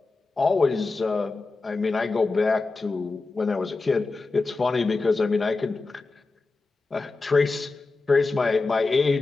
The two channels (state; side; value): quieter; right; 3.7 dB